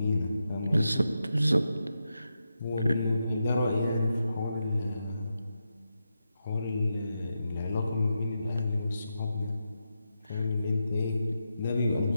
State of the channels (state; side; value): inverted; both; correlation -0.87